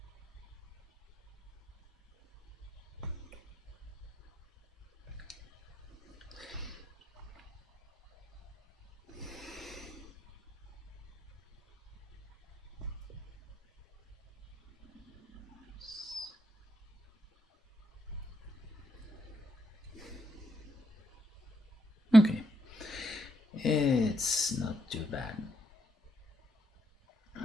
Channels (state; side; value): normal; both; correlation 0.78